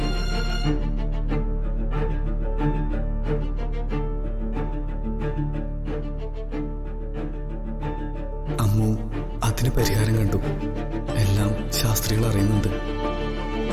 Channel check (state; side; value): identical; both; correlation 1.00